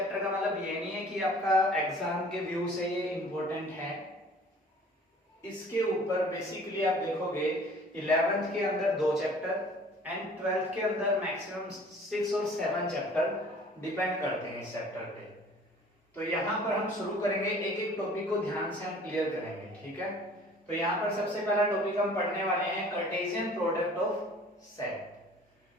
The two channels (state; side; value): normal; both; correlation 0.50